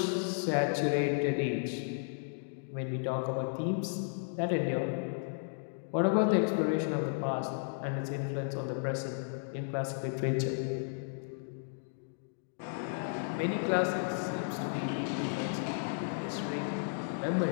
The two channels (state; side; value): silent; right; digital silence